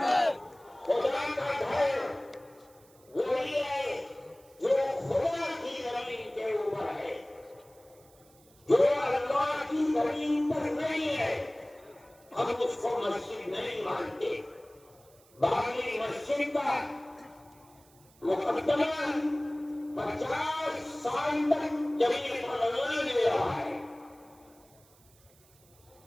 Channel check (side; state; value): right; noise; hiss, 28 dB below the sound